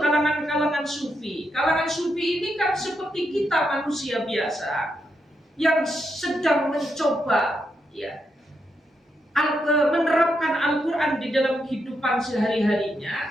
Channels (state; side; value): normal; both; correlation 0.82